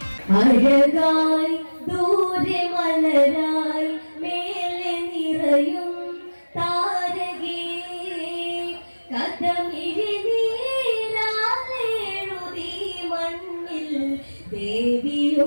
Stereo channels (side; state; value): both; inverted; correlation -1.00